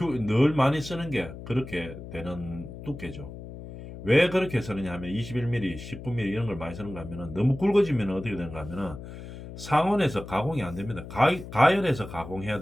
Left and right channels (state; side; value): noise; left; hum, 12 dB below the sound